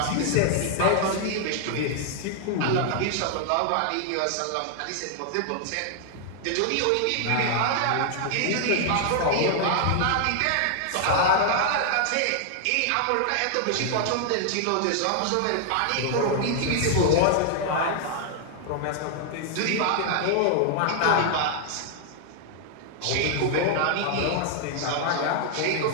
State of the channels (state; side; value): different; both; correlation 0.00